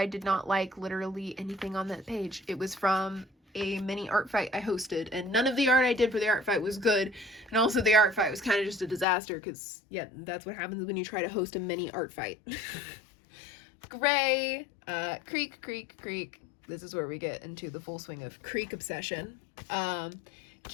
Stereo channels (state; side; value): drops out; right; at 9.1 s